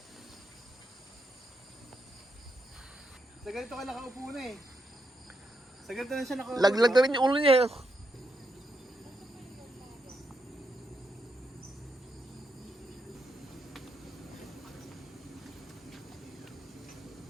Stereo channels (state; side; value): normal; both; correlation 0.82